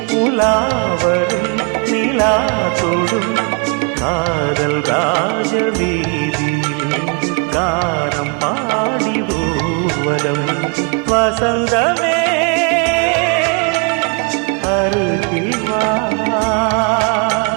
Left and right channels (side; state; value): left; quieter; 37.4 dB